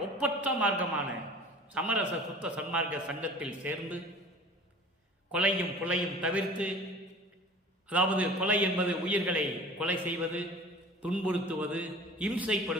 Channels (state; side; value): normal; both; correlation 0.43